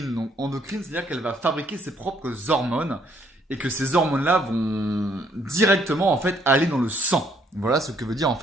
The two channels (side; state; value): both; normal; correlation 0.67